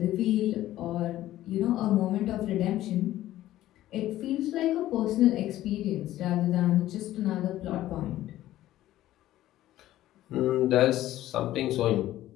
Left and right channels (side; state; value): right; quieter; 14.3 dB